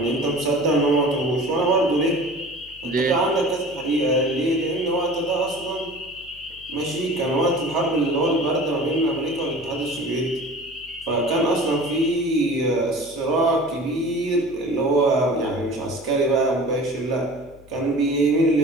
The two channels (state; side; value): noise; left; hum, 24 dB below the sound